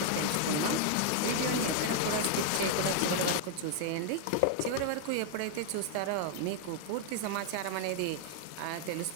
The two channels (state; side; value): different; both; correlation 0.00